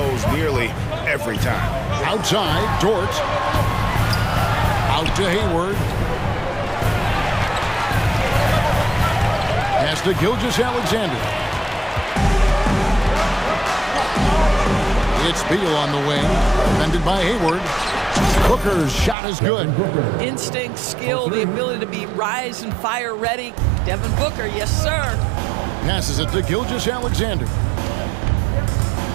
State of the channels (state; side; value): drops out; left; at 19.2 s